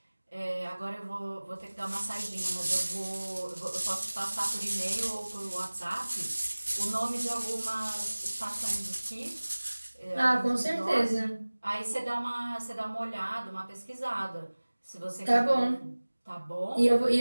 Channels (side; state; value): both; inverted; correlation -1.00